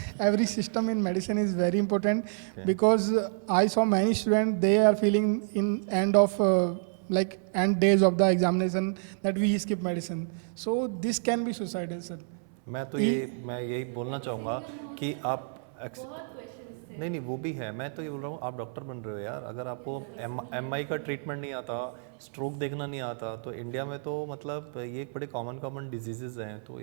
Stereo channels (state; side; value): silent; left; 58 dB below the other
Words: every system in medicine is very important because I saw many students, they are feeling in end of end days of the examination that we skip medicine. So this can be suicidal, sir. मैं यही बोलना चाहूँगा कि आप नहीं वो भी है. मैं तो ये बोल रहा हूँ, आप डॉक्टर बन रहे हो यार, अगर आपको MI का ट्रीटमेंट नहीं आता, स्ट्रोक देखना नहीं आता, तो इंडिया में तो मतलब ये एक बड़े कॉमन डिजीजेज हैं, तो